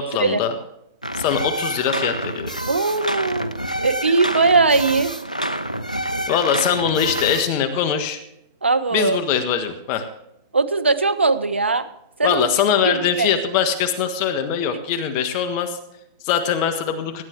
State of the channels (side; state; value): both; inverted; correlation -0.33